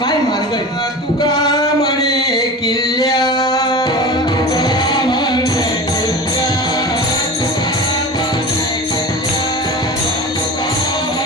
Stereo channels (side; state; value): both; normal; correlation 0.32